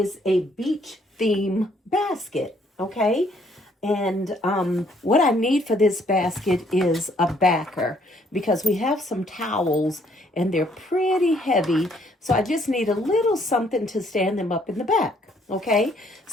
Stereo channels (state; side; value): normal; both; correlation 0.66